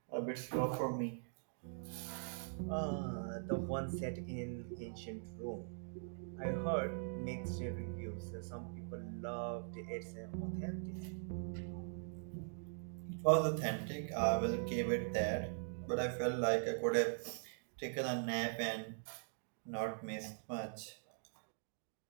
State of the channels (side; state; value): left; silent; digital silence